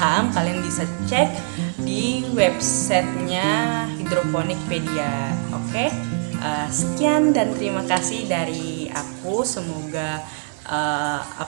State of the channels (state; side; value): silent; left; digital silence